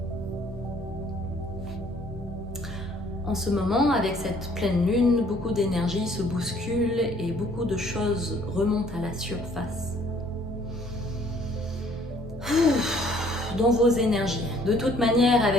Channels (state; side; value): normal; both; correlation 0.60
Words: En ce moment, avec cette pleine lune, beaucoup d'énergie se bouscule et beaucoup de choses remontent à la surface. Dans vos énergies. De toute manière,